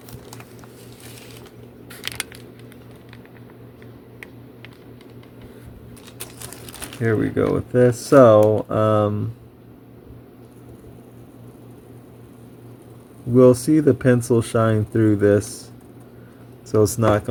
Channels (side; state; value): both; identical; correlation 1.00